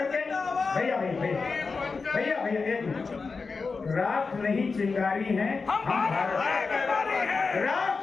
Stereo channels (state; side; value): quieter; right; 4.5 dB